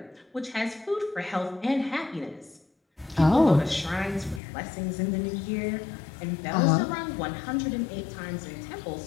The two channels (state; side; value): drops out; right; at 4.4 s